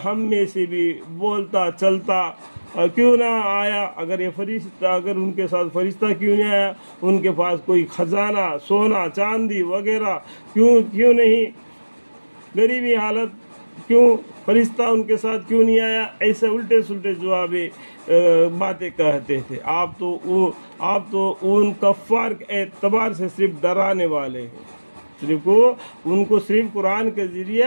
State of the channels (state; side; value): inverted; both; correlation -1.00